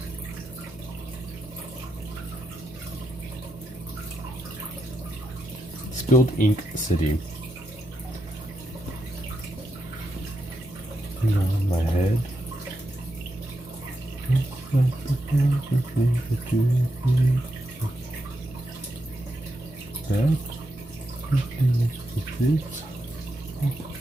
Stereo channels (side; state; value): both; normal; correlation 0.84